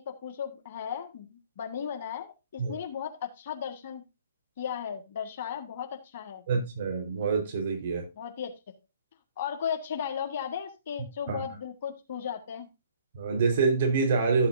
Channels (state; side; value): inverted; both; correlation -0.59